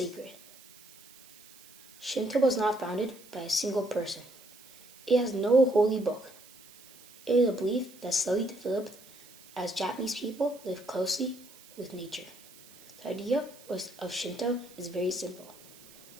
Shinto was not founded by a single person. It has no holy book. It is a belief that slowly developed as Japanese people lived closely with nature. The idea of Shinto is very simple.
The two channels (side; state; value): right; noise; hiss, 22 dB below the sound